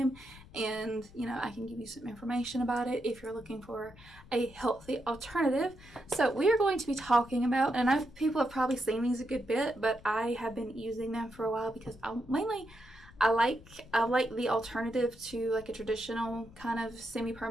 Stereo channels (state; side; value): noise; left; rumble, 22 dB below the sound